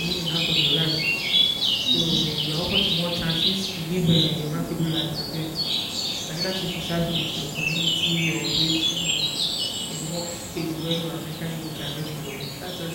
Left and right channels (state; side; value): identical; both; correlation 1.00